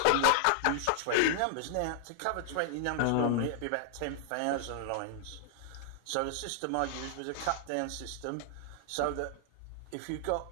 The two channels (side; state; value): both; different; correlation 0.00